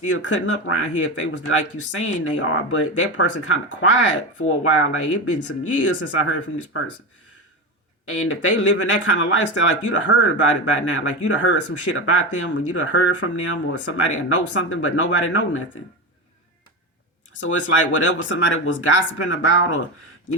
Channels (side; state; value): both; normal; correlation 0.19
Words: cutting up around here if they was like you saying they are. But that person kind of quiet for a while, like it's been some years since I heard from this person. And if they live in that kind of lifestyle, like you'd have heard about it by now. Like you'd have heard some shit about them, or you'd have heard from them, or somebody know something, but nobody know nothing. So it's like whatever somebody was gossiping about,